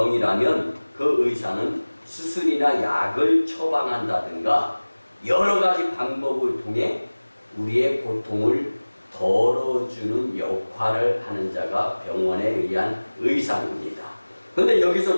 그 의사는 수술이나 약을 처방한다든가 여러 가지 방법을 통해 우리의 고통을 덜어주는 역할을 하는 자가 병원에 의한 의사입니다. 그런데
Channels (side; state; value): both; inverted; correlation -1.00